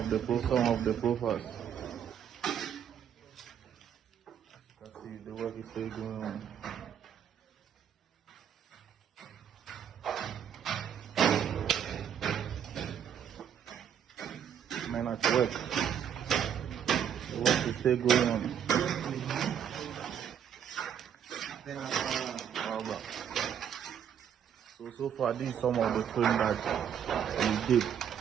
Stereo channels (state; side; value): quieter; left; 8.8 dB